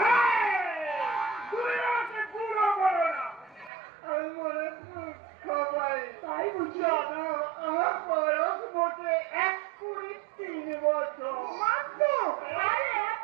তুই আমাকে বুড়ো বলো না, আমি মনে সবাই তাই বুঝি? জানো আমার বয়স মোটে 1-3 বছর মাত্র? আরে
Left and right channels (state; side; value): drops out; left; at 3.7 s